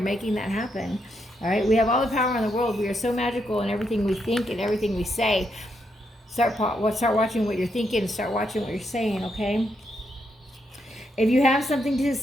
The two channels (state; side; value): normal; both; correlation 0.80